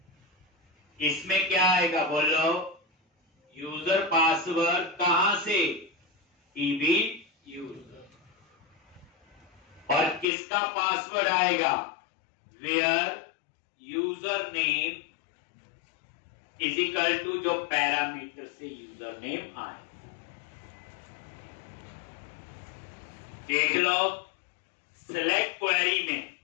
इसमें क्या आएगा बोलो, यूजर पासवर्ड कहां से, टीबी यूजर, और किसका पासवर्ड आएगा, where user name is equal to जो पैरामीटर से यूजर नेम आए। देख लो सिलेक्ट क्वेरी में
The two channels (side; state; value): right; drops out; at 10.2 s